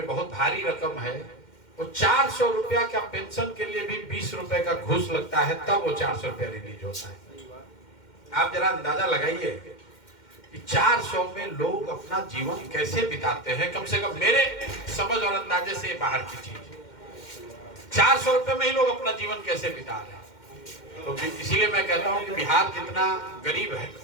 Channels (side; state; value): right; late; 2.1 ms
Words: बहुत भारी रकम है। वो 400 रुपया का पेंशन के लिए भी 20 रुपए का घूस लगता है, तब वो 400 रुपया रिलीज होता है। आप जरा अंदाजा लगाइए कि 400 में लोग अपना जीवन कैसे बिताते हैं। कम से कम मेरे समझ और अंदाजे से बाहर की चीज, 400 रुपए में ही लोग अपना जीवन कैसे बिता रहे हैं। तो इसीलिए मैं कहता हूं कि बिहार जितना गरीब है,